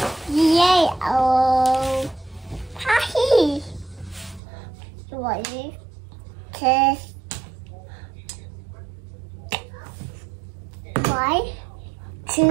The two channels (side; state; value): left; drops out; at 4.4 s